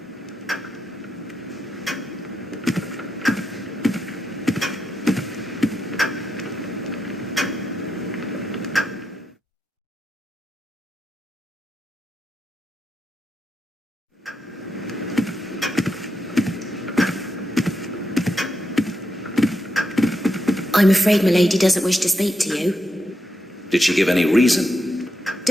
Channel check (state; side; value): normal; both; correlation 0.83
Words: I'm afraid milady doesn't wish to speak to you. Did she give any reason?